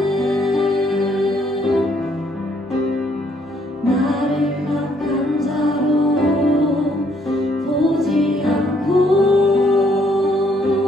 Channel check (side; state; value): both; normal; correlation 0.68